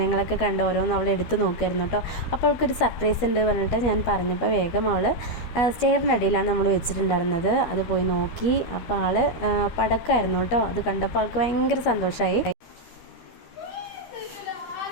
കണ്ട് ഓരോന്ന് അവൾ എടുത്ത് നോക്കുമായിരുന്നു കേട്ടോ. അപ്പോൾ അവൾക്കൊരു സർപ്രൈസ് ഉണ്ട് പറഞ്ഞിട്ട് ഞാൻ പറഞ്ഞപ്പോൾ വേഗം അവൾ സ്റ്റെയറിനടിയിലാണ് നമ്മൾ വെച്ചിട്ടുണ്ടായിരുന്നത്. അത് പോയി നോക്കി. അപ്പോൾ ആൾ പടക്കമായിരുന്നു കേട്ടോ. അത് കണ്ടപ്പോൾ ആൾക്ക് ഭയങ്കര സന്തോഷമായി.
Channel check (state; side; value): late; right; 12 ms